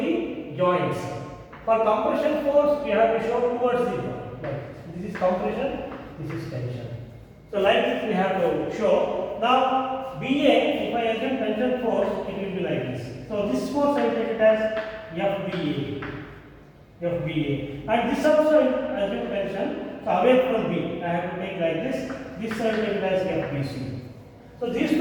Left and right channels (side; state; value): both; identical; correlation 1.00